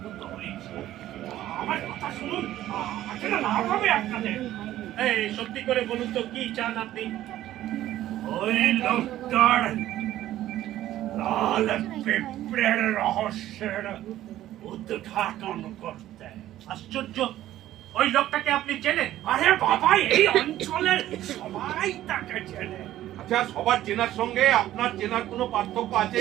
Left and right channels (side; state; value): left; quieter; 13.6 dB